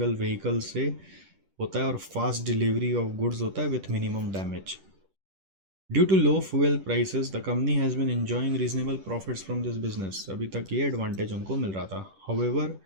व्हीकल से होता है, और फास्ट डिलीवरी ऑफ गुड्स होता है with minimum damage. Due to low fuel prices the company has been enjoying reasonable profits from this business. अभी तक ये एडवांटेज उनको मिल रहा था. However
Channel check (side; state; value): left; late; 10 ms